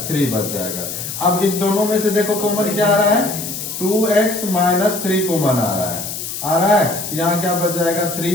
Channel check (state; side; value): noise; left; hiss, 7 dB below the sound